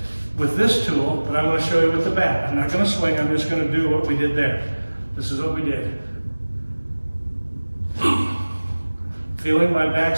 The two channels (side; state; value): both; inverted; correlation -1.00